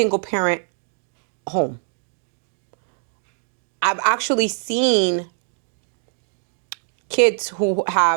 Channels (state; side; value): silent; left; digital silence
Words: parent home. I've actually seen kids who